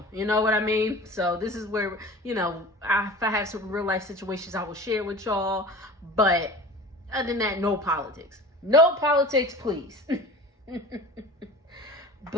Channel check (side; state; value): both; normal; correlation 0.39